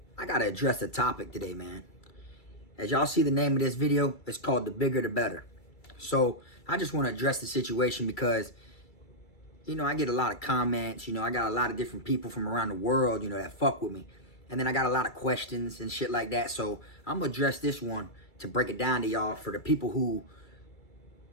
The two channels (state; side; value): late; right; 2.3 ms